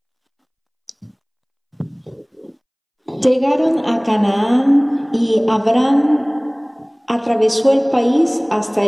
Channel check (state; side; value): identical; both; correlation 1.00